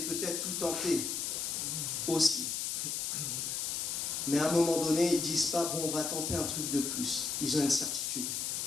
peut-être tout tenté aussi. Mais à un moment donné, ils ne disent pas, bon, on va tenter un truc de plus. Ils ont une certitude.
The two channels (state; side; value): noise; left; hiss, 1 dB below the sound